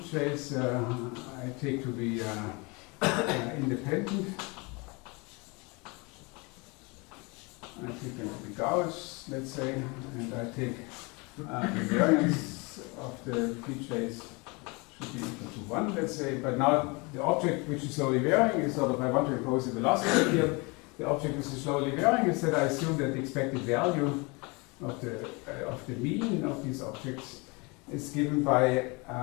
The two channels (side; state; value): right; quieter; 28.1 dB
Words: trace I take to be independent. I take them to be Gauss, let's say, and I take the variance of the P trace should be equal to 1, let's say. But now the object which is slowly varying is sort of, I want to impose a velocity field. The object which is slowly varying is that I assume that the expected value of the mean of these objects is given by